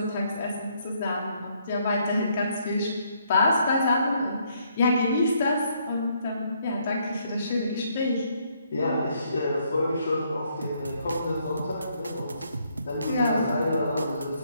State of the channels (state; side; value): inverted; both; correlation -0.71